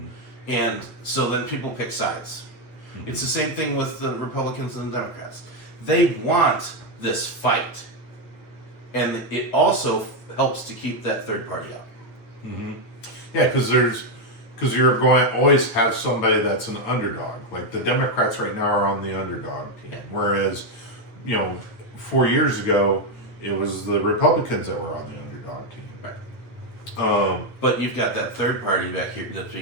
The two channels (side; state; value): right; late; 8.7 ms